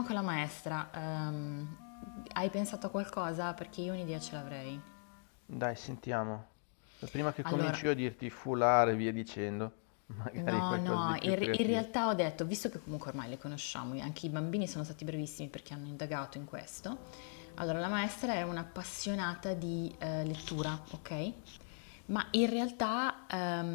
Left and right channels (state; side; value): silent; right; 52 dB below the other